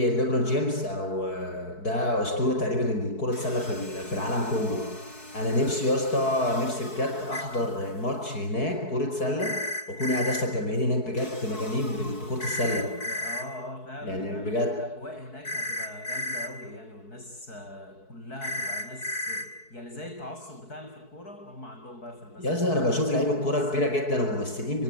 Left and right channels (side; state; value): right; late; 4.6 ms